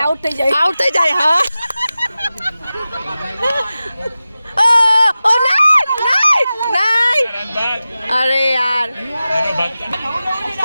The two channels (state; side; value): inverted; both; correlation -0.95